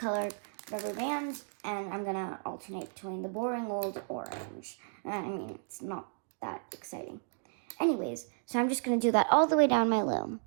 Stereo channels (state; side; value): silent; left; 55 dB below the other